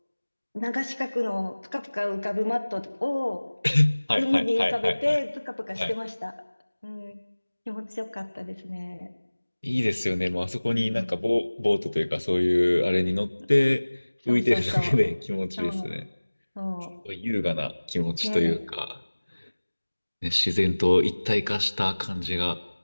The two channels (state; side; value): inverted; both; correlation -1.00